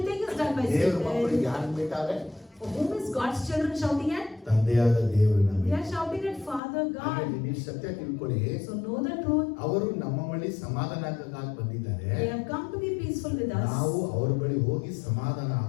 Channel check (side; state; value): right; drops out; at 6.6 s